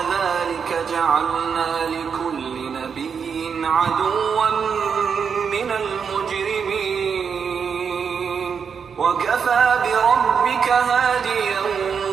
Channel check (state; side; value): quieter; left; 6.5 dB